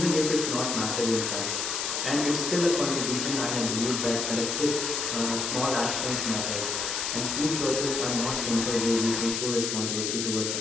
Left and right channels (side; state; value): left; noise; hiss, 1 dB below the sound